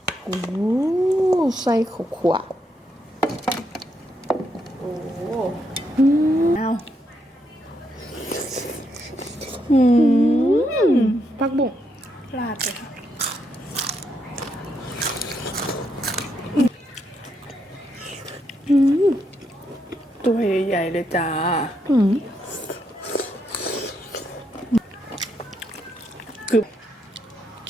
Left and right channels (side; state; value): both; normal; correlation 0.78